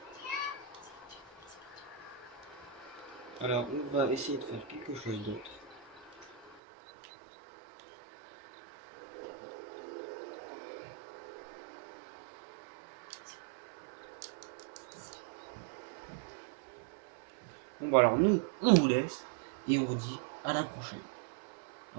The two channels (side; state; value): left; drops out; at 6.6 s